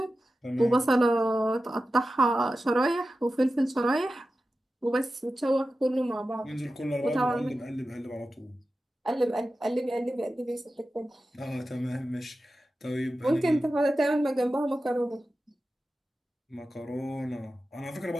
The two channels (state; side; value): normal; both; correlation 0.93